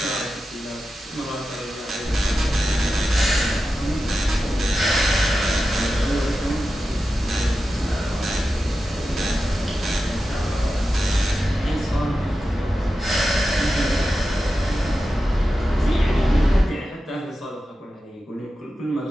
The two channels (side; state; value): both; normal; correlation 0.92